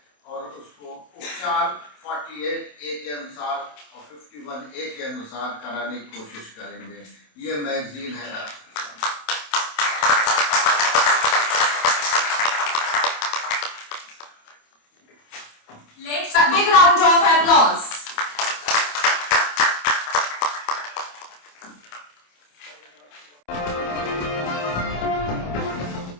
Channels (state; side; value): late; right; 27 ms